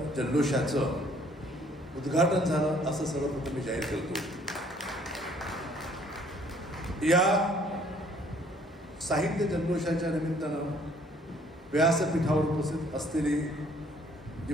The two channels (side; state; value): both; normal; correlation 0.60